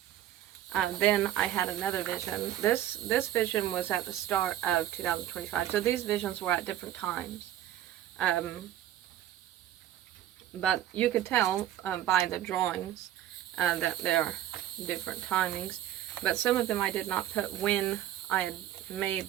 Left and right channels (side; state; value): left; quieter; 12.3 dB